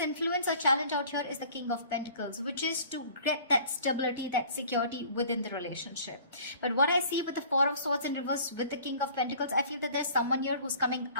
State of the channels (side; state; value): both; inverted; correlation -0.49